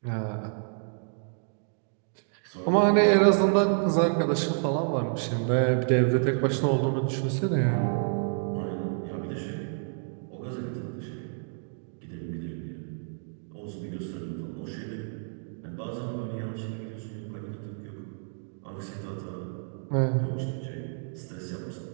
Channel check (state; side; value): silent; left; digital silence